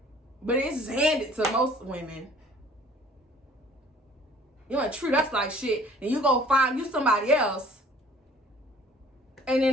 But it's handed to most women. You want to treat us like shit, and you go find you somebody else, and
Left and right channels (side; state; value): both; normal; correlation 0.54